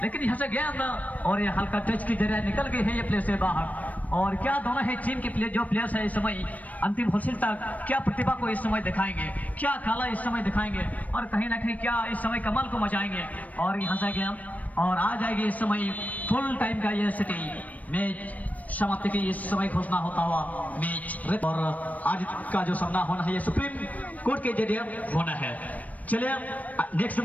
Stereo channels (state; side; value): late; right; 0.072 ms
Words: लेकिन यहाँ से गेंद और ये हल्का टच की जरिए निकल गई है ये प्लेयर से बाहर। और क्या दोनों है टीम के प्लेयर जो प्लेयर्स है इस समय अंतिम हासिल तक क्या प्रतिभा को इस समय दिखाएंगे, क्या कला इस समय दिखाएंगे, और कहीं ना कहीं क्या इस समय कमाल को मचाएंगे। और यहाँ से गेंद और आ जाएगी इस समय फुल टाइम का ये सिटी मैच समाप्ति की इस समय घोषणा होता हुआ मैच। और आज का जो सामना होना है ये सुप्रीम कोर्ट के जरिए होना है। चलिए नेक्स्ट